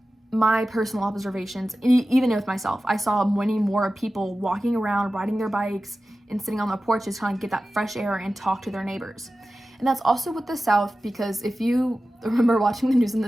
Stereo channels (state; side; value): normal; both; correlation 0.95